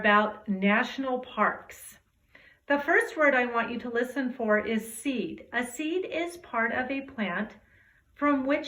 national parks. The first word I want you to listen for is seed. A seed is part of a plant from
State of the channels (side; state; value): both; identical; correlation 1.00